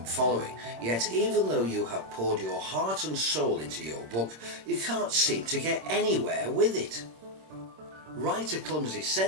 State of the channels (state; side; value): late; left; 26 ms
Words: following, yet even though you have poured your heart and soul into your book, you can't seem to get anywhere with it? Write a clumsy